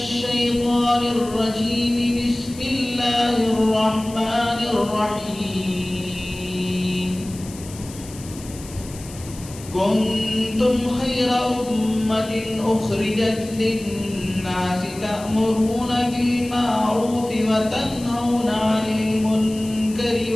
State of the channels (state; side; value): noise; left; hiss, 17 dB below the sound